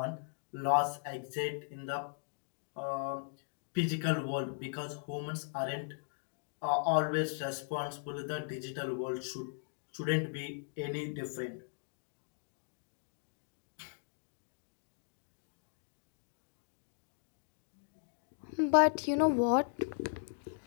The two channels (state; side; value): silent; right; digital silence